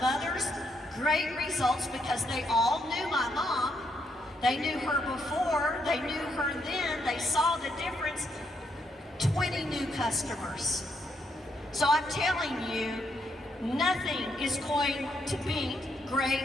great results, because they all knew my mom, they knew her before, they knew her then, they saw the difference, 20 new customers. So I'm telling you, nothing is going to beat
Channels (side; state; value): both; normal; correlation 0.76